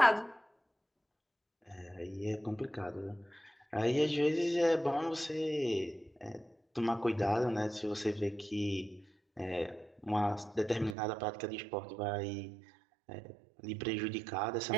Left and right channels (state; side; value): drops out; left; at 11.0 s